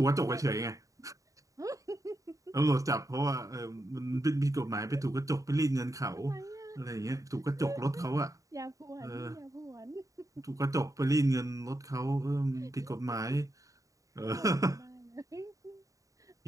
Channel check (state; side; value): late; left; 0.16 ms